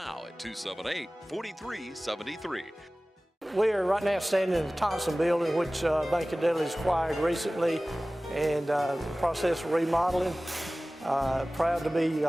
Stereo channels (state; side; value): normal; both; correlation 0.98